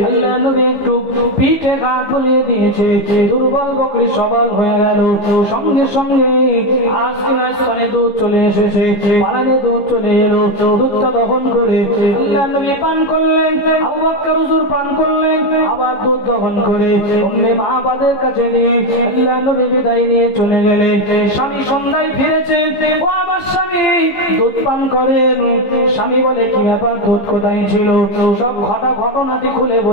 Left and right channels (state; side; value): late; right; 15 ms